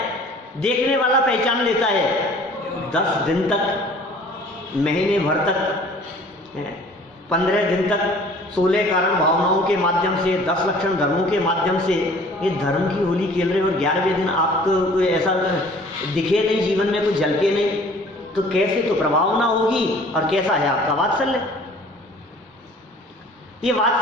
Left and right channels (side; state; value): both; normal; correlation 0.51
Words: देखने वाला पहचान लेता है। 10 दिन तक, महीने भर तक, 15 दिन तक 16 कारण भावनाओं के माध्यम से, 10 लक्षण धर्मों के माध्यम से ये धर्म की होली खेल रहे हो और 11वें दिन आपको कोई ऐसा दिखे नहीं, जीवन में कुछ झलके नहीं, तो कैसे तो प्रभावना होगी और कैसा है आपका वात्सल्य। ये